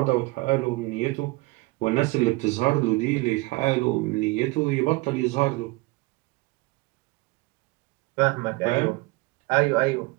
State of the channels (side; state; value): left; quieter; 23.3 dB